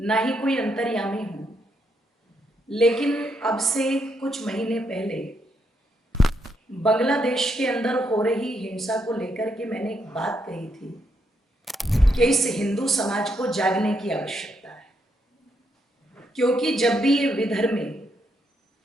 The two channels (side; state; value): both; normal; correlation 0.78